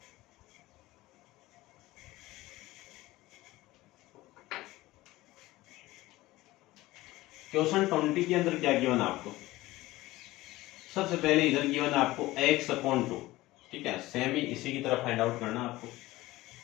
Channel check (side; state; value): right; quieter; 18.2 dB